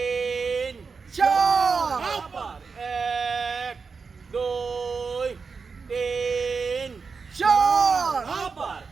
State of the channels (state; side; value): quieter; left; 5.0 dB